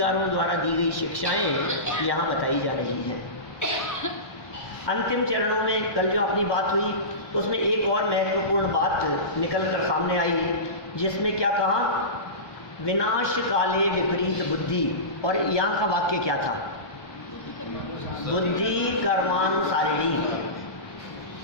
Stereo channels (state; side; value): late; right; 1.1 ms